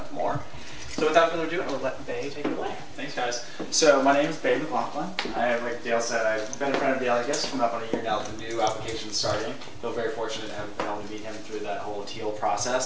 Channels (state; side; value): identical; both; correlation 1.00